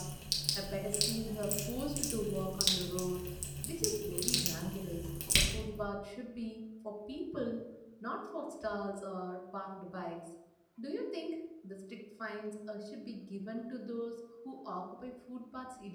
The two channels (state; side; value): identical; both; correlation 1.00